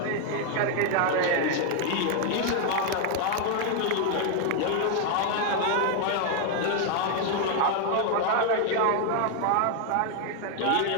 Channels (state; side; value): different; both; correlation 0.00